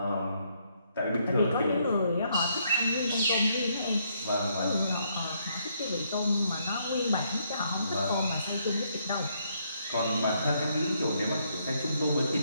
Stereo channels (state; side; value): inverted; both; correlation -0.73